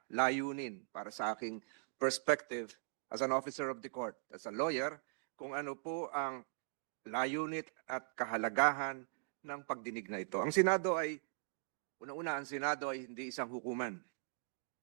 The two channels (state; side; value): silent; left; digital silence